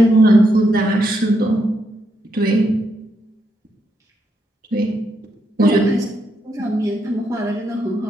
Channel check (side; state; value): both; normal; correlation 0.80